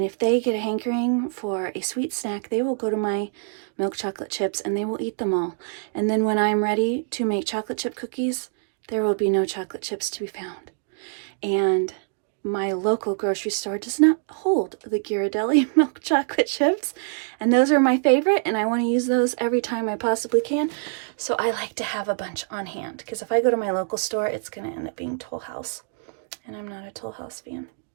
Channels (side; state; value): left; silent; digital silence